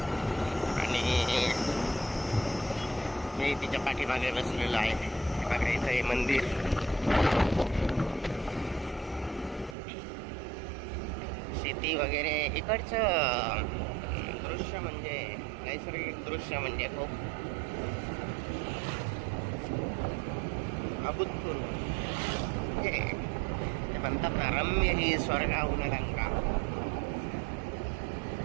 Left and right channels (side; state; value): left; drops out; at 9.8 s